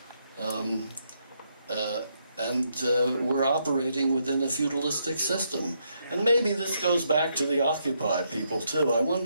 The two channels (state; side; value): inverted; both; correlation -0.77